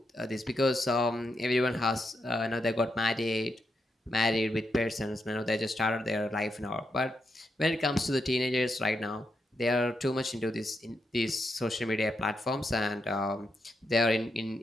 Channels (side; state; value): both; normal; correlation 0.83